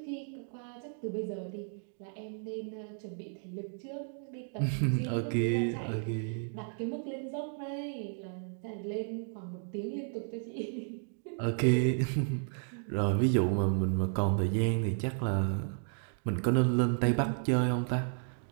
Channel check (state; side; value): silent; left; 56 dB below the other